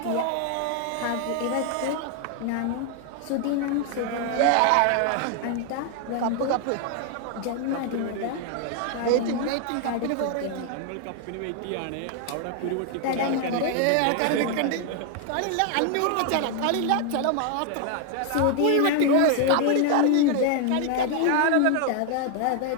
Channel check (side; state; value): both; different; correlation 0.00